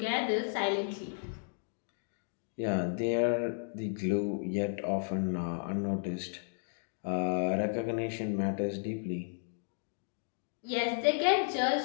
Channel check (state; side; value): silent; right; digital silence